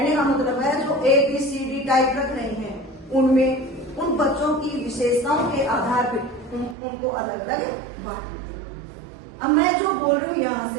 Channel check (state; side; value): drops out; left; at 6.8 s